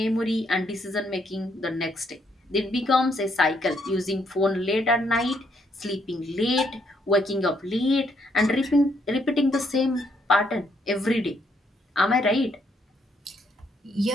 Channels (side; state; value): both; normal; correlation 0.73